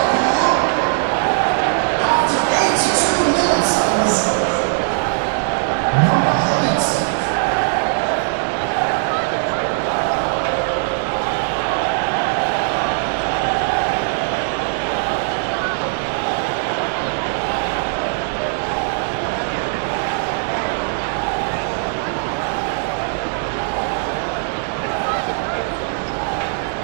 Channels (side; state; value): left; silent; 56 dB below the other